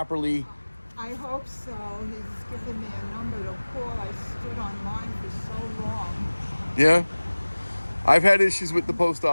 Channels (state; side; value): inverted; both; correlation -1.00